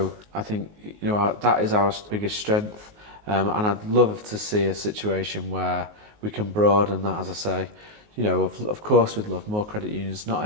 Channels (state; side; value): late; left; 19 ms